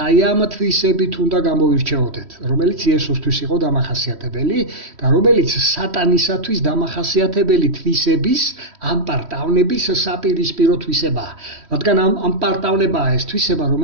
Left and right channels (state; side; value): late; left; 3.1 ms